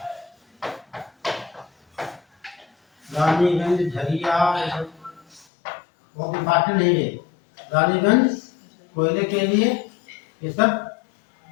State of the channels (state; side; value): drops out; right; at 5.5 s